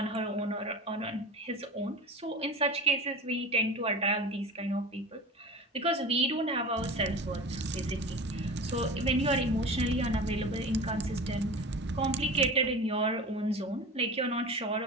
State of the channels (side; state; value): both; normal; correlation 0.33